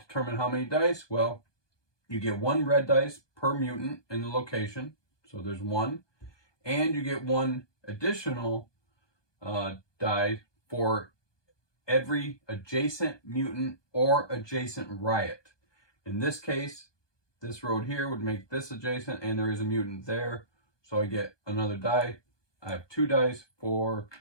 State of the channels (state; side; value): late; right; 1.2 ms